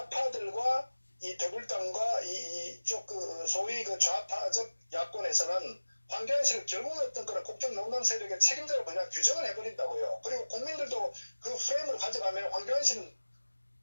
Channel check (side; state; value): both; inverted; correlation -1.00